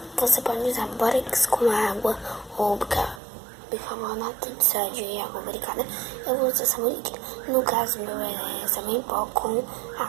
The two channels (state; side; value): drops out; left; at 3.2 s